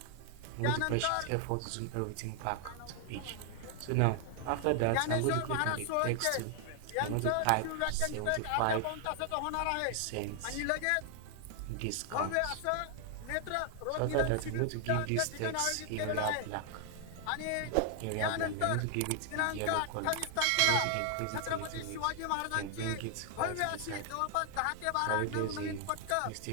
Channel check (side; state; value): both; different; correlation 0.00